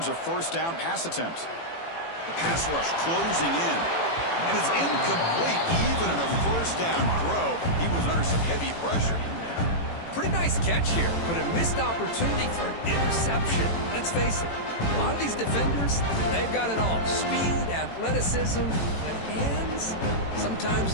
a 1st down pass attempt. The pass rush closing in. And it's incomplete. Even on a 1st down throw, he was under some heavy pressure. Pretty nice catch here, but a missed opportunity for an interception. Let's face it, a lot of these defenders, they've got it all. Speed, athleticism, but hands,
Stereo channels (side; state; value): right; late; 18 ms